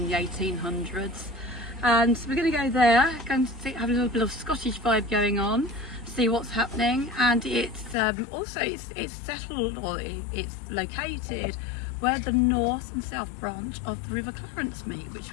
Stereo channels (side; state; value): right; drops out; at 8.0 s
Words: the 1800s. And so we're going to go there, going to have a little bit of Scottish vibe going on, see what's happening. And it's also it's settled, or it's located where the north and south branch of the River Clarence meet, which